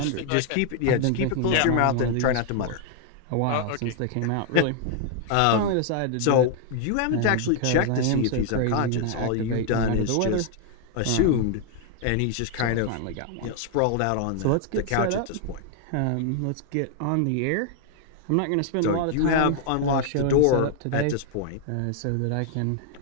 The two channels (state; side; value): different; both; correlation 0.00